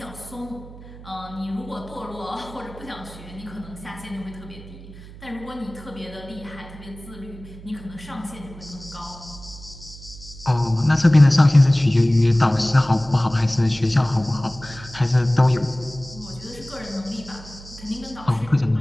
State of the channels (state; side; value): noise; right; hum, 17 dB below the sound